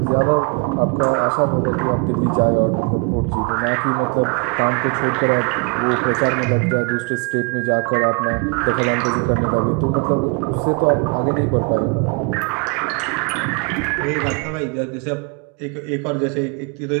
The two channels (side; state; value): left; quieter; 33.0 dB